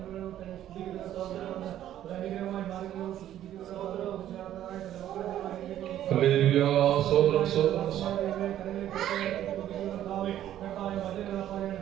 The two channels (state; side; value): quieter; left; 11.9 dB